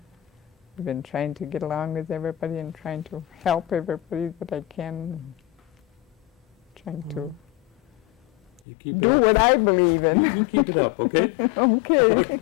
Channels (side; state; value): right; drops out; at 8.6 s